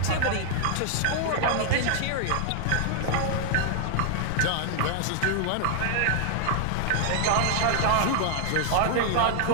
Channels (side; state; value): both; different; correlation 0.00